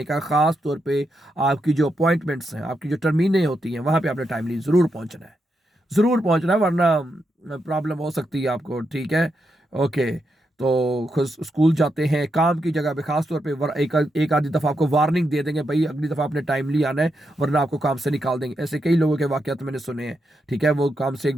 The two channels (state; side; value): normal; both; correlation 0.83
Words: कहा, ख़ास तौर पे आपकी जो अपॉइंटमेंट्स हैं, आपकी जो टर्मीनें होती हैं, वहाँ पे आपने टाइमली ज़रूर पहुँचना है, ज़रूर पहुँचना है, वरना प्रॉब्लम हो सकती है आपको, ठीक है। ओके, तो खुद स्कूल जाते हैं, काम की जगह पे खास तौर पे एक आधी दफ़ा आपको वार्निंग दे देंगे, भाई अगली दफ़ा आपने टाइमली आना है, वरना आपको काम से निकाल देंगे। ऐसे कई लोगों के वाक़यात मैंने सुने हैं, ठीक है। वो काम से एक